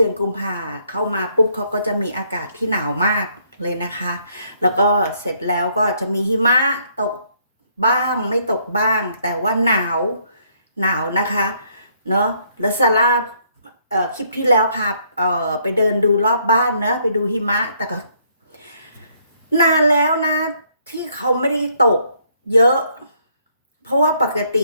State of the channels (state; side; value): inverted; both; correlation -0.68